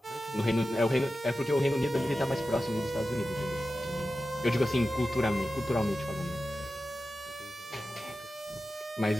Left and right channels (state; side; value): normal; both; correlation 0.93